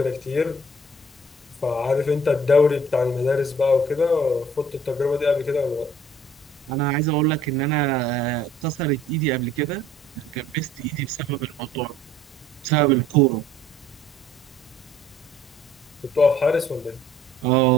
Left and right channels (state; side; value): normal; both; correlation 0.56